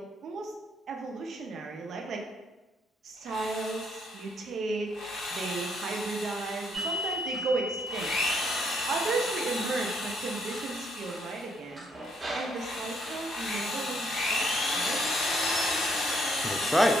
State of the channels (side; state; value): both; normal; correlation 0.71